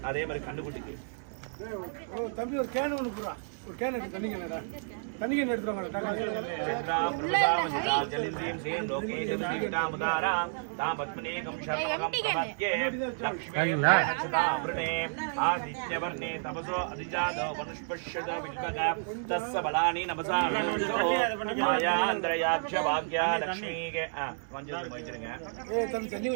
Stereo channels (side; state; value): left; silent; 57 dB below the other